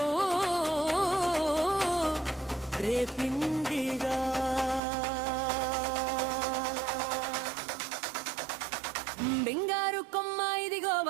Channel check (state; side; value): drops out; left; at 4.8 s